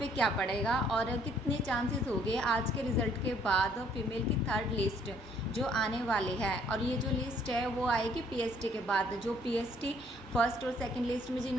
क्या पड़ेगा और कितने चांसेस हो गए आज के रिज़ल्ट के बाद फीमेल की थर्ड लिस्ट जो आने वाली है। और ये जो लिस्ट है वो आएगी पीएसटी के बाद। जो पीएसटी फर्स्ट और सेकंड लिस्ट में जिन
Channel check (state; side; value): normal; both; correlation 0.63